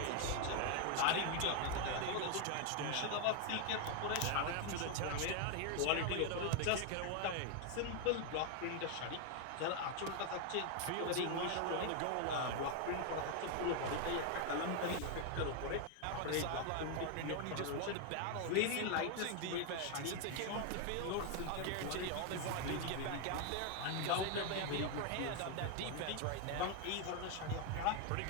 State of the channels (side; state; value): both; different; correlation 0.00